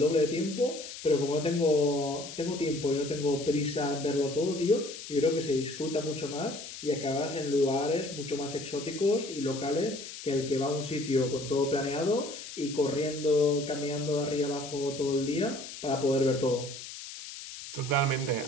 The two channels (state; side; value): noise; left; hiss, 11 dB below the sound